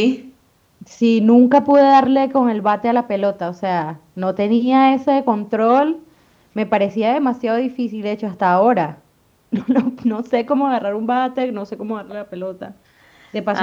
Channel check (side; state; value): both; identical; correlation 1.00